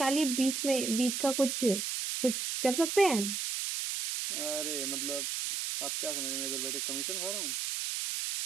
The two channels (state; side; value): noise; right; hiss, 2 dB below the sound